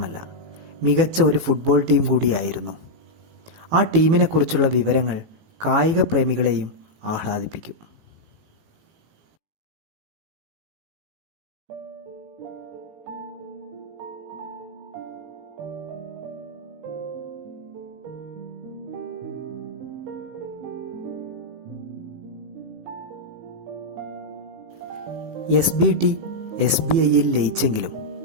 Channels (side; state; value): left; late; 18 ms